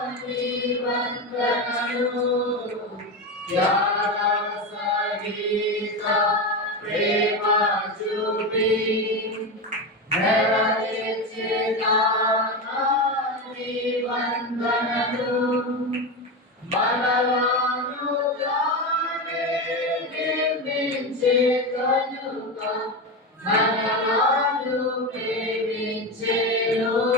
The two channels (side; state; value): both; normal; correlation 0.17